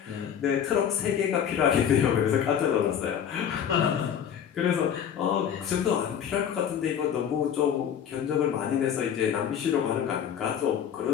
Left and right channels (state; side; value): quieter; right; 8.7 dB